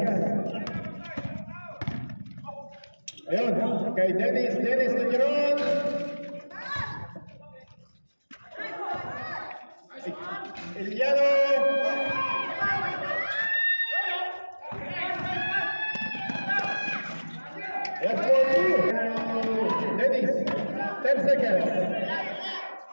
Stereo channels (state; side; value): inverted; both; correlation -1.00